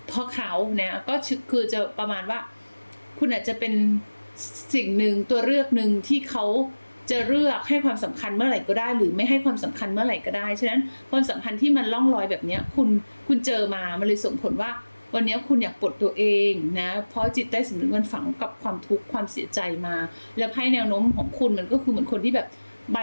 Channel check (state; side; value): inverted; both; correlation -1.00